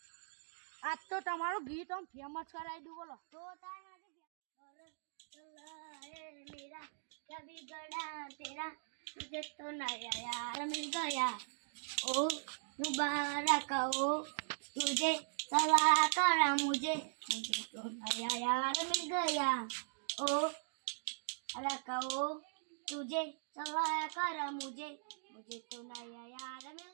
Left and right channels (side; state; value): left; silent; digital silence